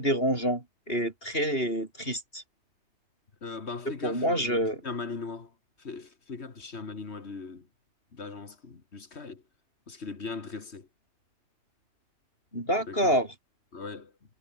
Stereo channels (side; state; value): right; late; 2.8 ms